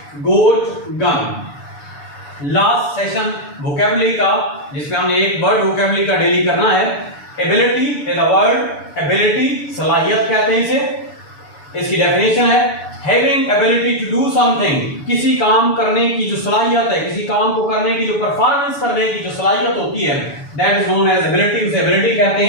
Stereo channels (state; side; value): late; right; 6.9 ms